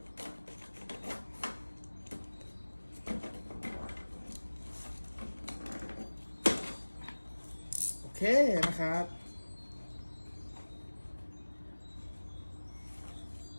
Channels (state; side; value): inverted; both; correlation -1.00